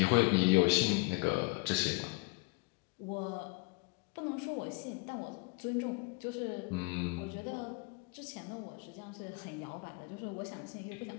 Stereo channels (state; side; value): quieter; right; 28.0 dB